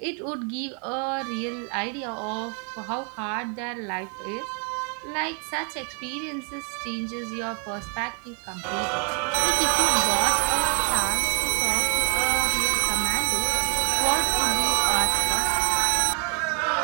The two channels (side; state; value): left; quieter; 38.9 dB